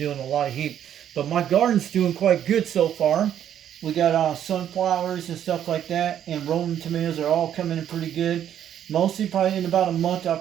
a lot of heat. But my garden's doing quite good so far. We got sunflowers and stuff like that, and Roman tomatoes are all coming in pretty good. Mostly probably in about a month I'll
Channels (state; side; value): quieter; left; 10.1 dB